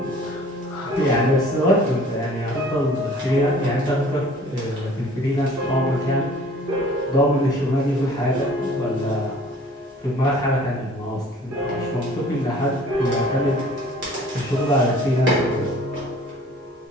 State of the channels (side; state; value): both; normal; correlation 0.50